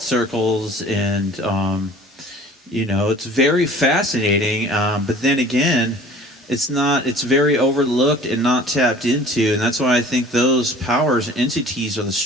circles, and it's very fascinating, but then again, it's very overlooked and not tapped into, and that's why I think those powers and entities are the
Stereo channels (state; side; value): normal; both; correlation 0.48